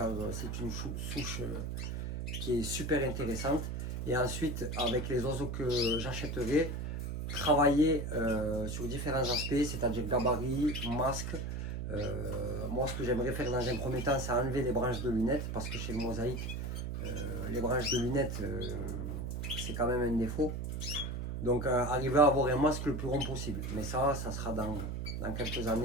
c'est une souche qui est super intéressante. Et ensuite, avec les oiseaux que j'achèterai, travailler sur différents aspects, c'est-à-dire gabarit, masque. Moi, ce que j'aimerais faire dans un premier temps, c'est enlever les branches de lunettes parce que chez le mosaïque, les branches de lunettes, c'est quand même un défaut. Donc, arriver à avoir un masque le plus rond possible. Mais ça sera dans quelques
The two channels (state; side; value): noise; right; hum, 4 dB below the sound